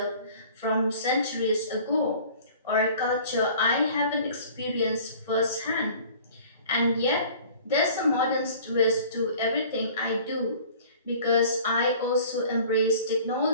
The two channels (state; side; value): inverted; both; correlation -0.47